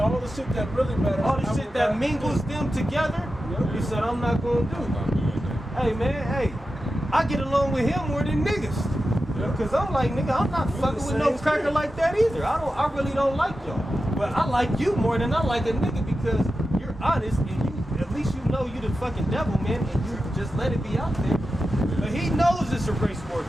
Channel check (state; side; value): normal; both; correlation 0.91